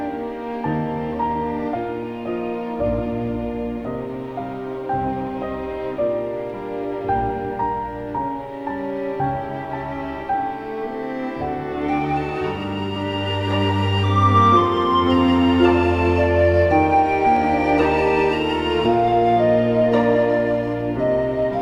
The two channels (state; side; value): identical; both; correlation 1.00